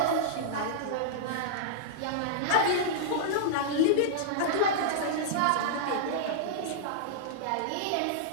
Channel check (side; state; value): both; different; correlation -0.02